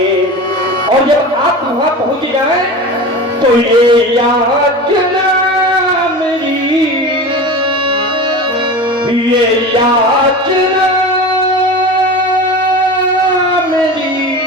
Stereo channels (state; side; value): normal; both; correlation 0.31